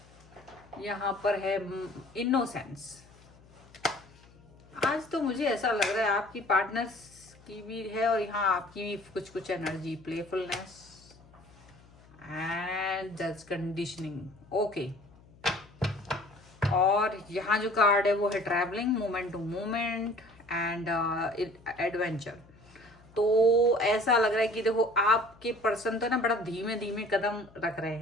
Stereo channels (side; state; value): left; noise; hum, 25 dB below the sound